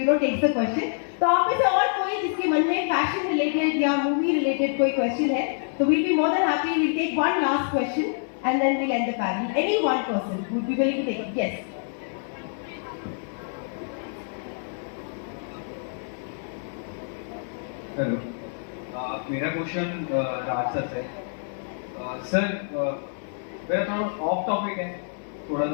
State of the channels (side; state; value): right; silent; 61 dB below the other